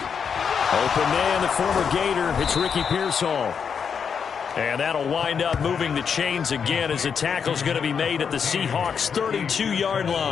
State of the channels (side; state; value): right; quieter; 6.7 dB